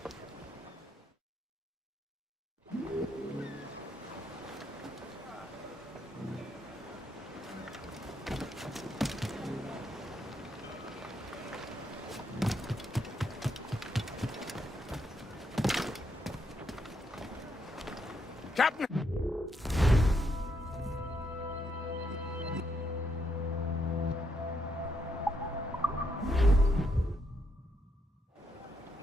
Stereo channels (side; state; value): both; normal; correlation 0.77